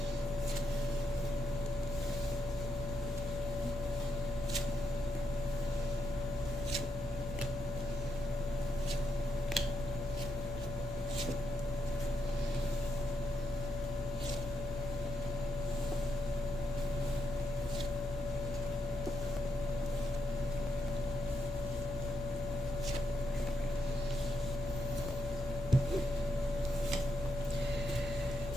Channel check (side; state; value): right; noise; rumble, 10 dB below the sound